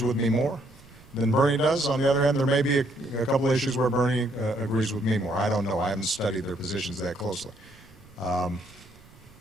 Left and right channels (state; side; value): noise; right; rumble, 25 dB below the sound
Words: with me more than Bernie does. On the other hand, there may be a couple of issues where Bernie agrees with me more. I don't know. I haven't studied their positions that closely.